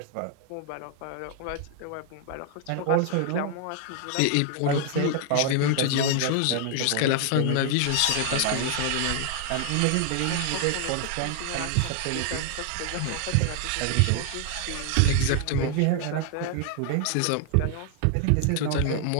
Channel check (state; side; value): different; both; correlation 0.00